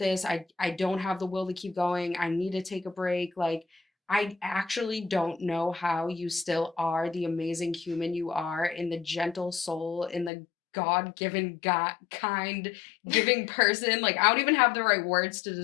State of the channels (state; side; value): drops out; right; at 10.3 s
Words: I don't have the will to keep going. I need to take a break. Like, I actually don't know how you still are the amazing human you are in the gentle soul, in the God-given, God kind giving person. Like, I don't even have the right words to